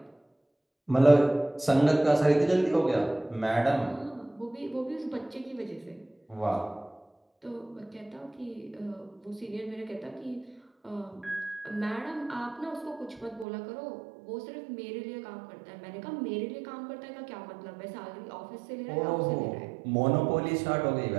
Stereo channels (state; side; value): drops out; left; at 13.5 s